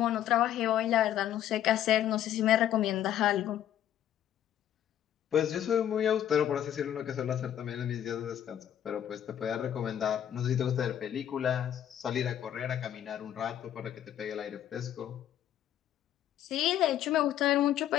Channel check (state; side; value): quieter; right; 10.9 dB